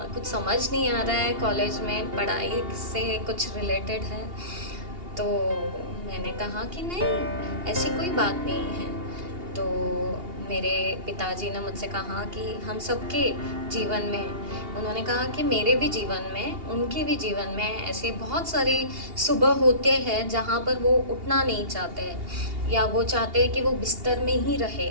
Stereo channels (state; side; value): late; left; 2.8 ms